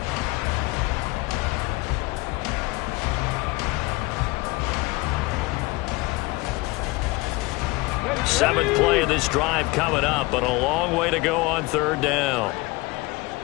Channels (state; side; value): quieter; right; 23.2 dB